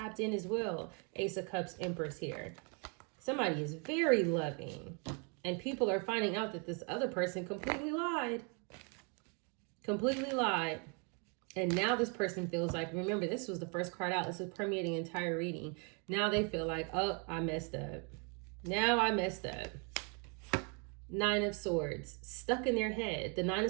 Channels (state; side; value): quieter; left; 35.9 dB